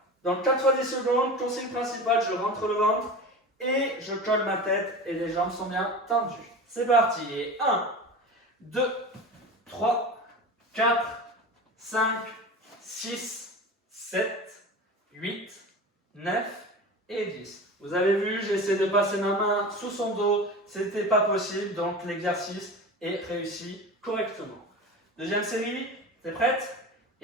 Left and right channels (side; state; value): both; normal; correlation 0.31